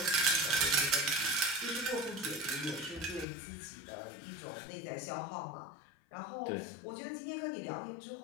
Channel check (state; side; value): drops out; right; at 3.2 s